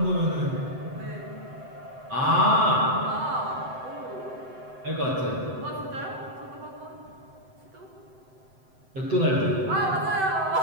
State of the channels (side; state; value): left; late; 7.8 ms